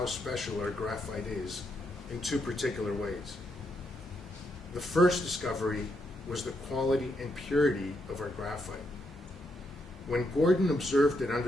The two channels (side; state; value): both; normal; correlation 0.79